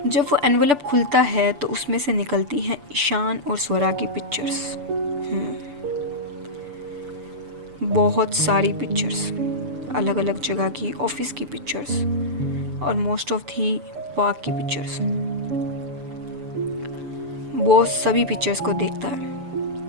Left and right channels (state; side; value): late; left; 6.9 ms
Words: जब वो एनवलप खुलता है तो उसमें से निकलती हैं ईशान और स्वरा की पिक्चर्स। बहुत सारी पिक्चर्स, अलग अलग जगह की, ऑफिस की पिक्चर्स और मोस्ट ऑफ थी पार्क की पिक्चर्स। बॉस सभी पिक्चर्स को देखती